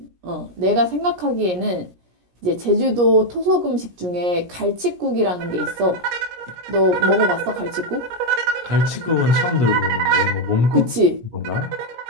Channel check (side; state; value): left; late; 17 ms